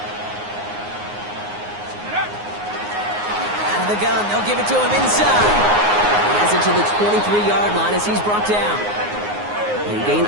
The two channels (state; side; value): late; left; 9.6 ms